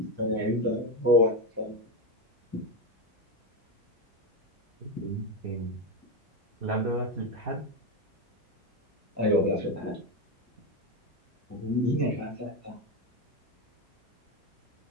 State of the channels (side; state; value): both; normal; correlation 0.12